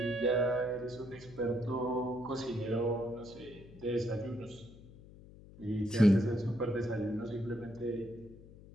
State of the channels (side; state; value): left; noise; hum, 19 dB below the sound